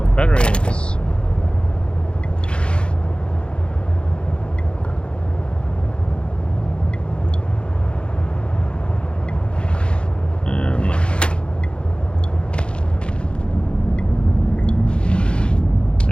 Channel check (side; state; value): right; late; 0.055 ms